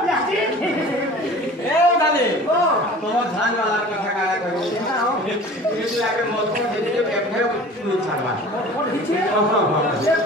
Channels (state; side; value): normal; both; correlation 0.42